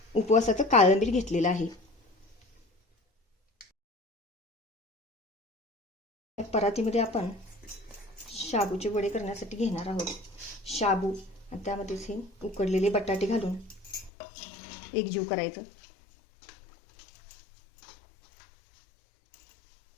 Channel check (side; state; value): right; drops out; at 14.1 s